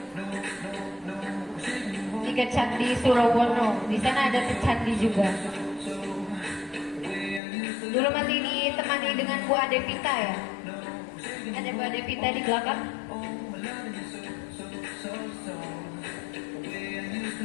Tiga candi Surawono, di sana ada candi juga. Dulu masih ditemani dengan Bu Adevita ya. Ada Bu Adevita di belakang.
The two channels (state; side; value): drops out; right; at 7.4 s